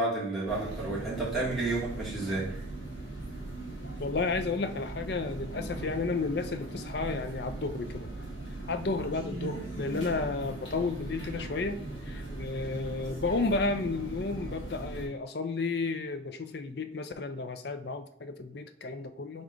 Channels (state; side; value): normal; both; correlation 0.31